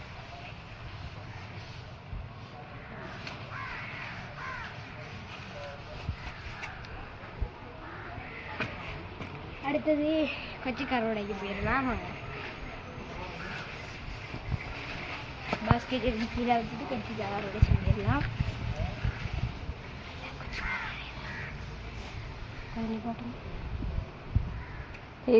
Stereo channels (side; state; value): both; identical; correlation 1.00